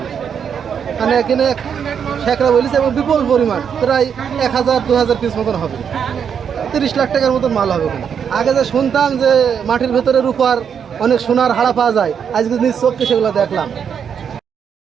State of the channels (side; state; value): left; quieter; 7.5 dB